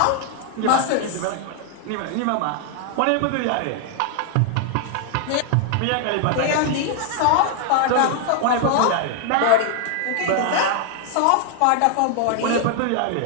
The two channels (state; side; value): different; both; correlation 0.00